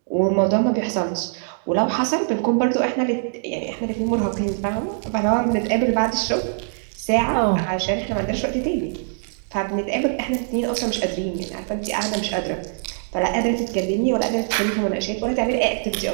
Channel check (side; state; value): left; silent; digital silence